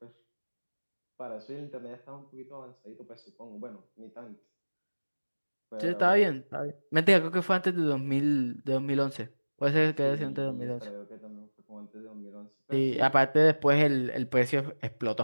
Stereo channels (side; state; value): both; inverted; correlation -1.00